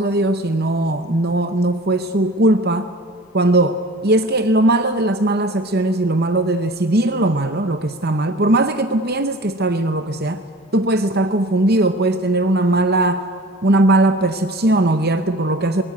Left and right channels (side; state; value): both; normal; correlation 0.42